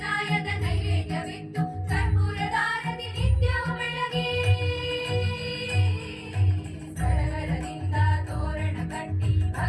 ನೈವೇದ್ಯವಿತ್ತು ಕರ್ಪೂರದಾರತಿ ನಿತ್ಯವೂ ಬೆಳಗಿ ಸಡಗರದಿಂದ ತೋರಣ ಕಟ್ಟಿ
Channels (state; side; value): identical; both; correlation 1.00